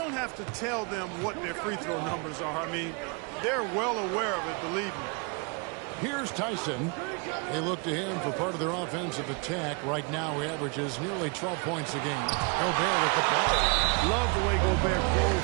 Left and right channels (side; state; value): left; quieter; 32.3 dB